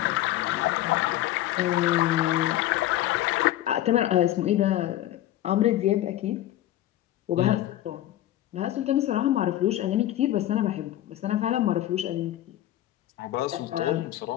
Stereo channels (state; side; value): quieter; right; 13.9 dB